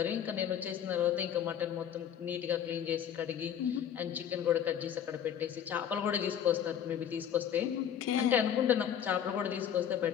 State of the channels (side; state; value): right; quieter; 9.2 dB